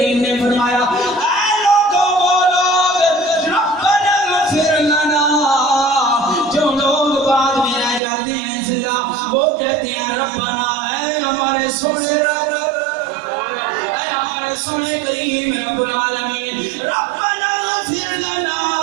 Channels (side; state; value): left; drops out; at 8.0 s